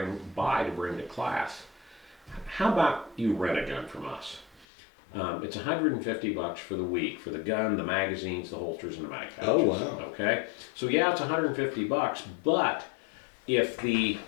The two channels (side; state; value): right; drops out; at 4.7 s